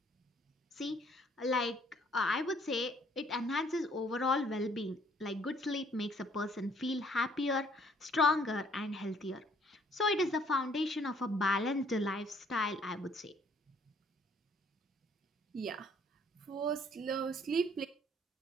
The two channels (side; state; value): both; normal; correlation 0.62